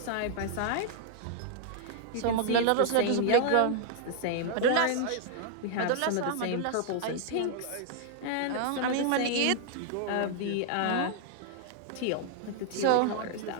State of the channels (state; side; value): different; both; correlation -0.01